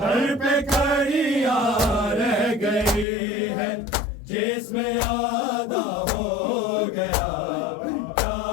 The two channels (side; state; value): right; drops out; at 3.1 s